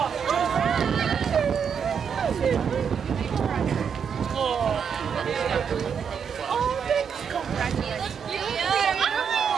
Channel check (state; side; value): quieter; left; 7.0 dB